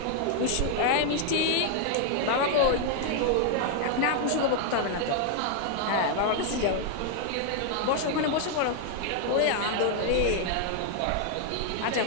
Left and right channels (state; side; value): different; both; correlation 0.00